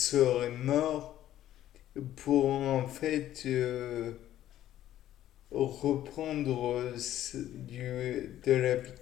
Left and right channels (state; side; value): quieter; right; 12.7 dB